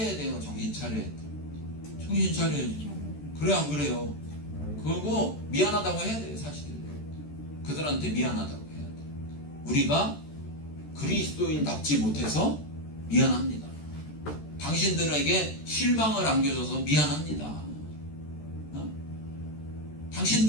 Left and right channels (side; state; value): right; late; 13 ms